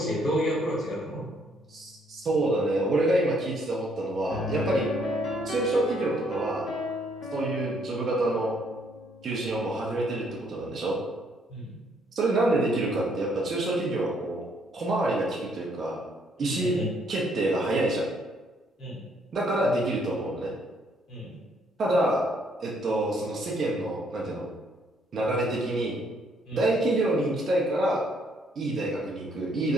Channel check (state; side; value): normal; both; correlation 0.68